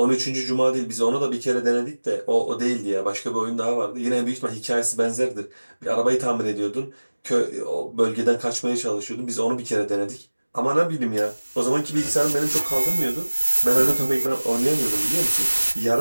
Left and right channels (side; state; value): both; inverted; correlation -1.00